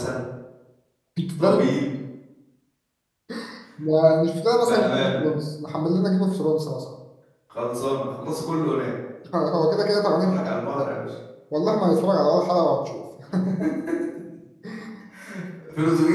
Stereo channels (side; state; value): both; identical; correlation 1.00